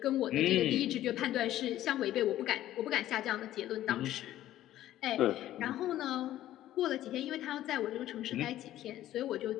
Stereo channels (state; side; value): quieter; right; 13.5 dB